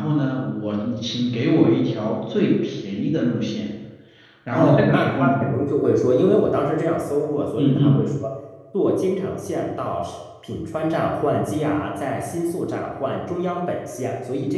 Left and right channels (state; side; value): identical; both; correlation 1.00